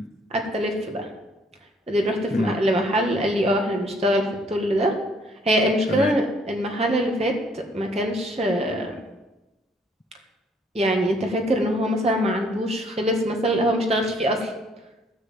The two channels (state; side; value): normal; both; correlation 0.63